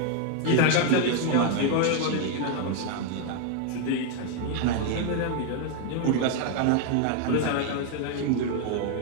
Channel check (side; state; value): both; different; correlation 0.00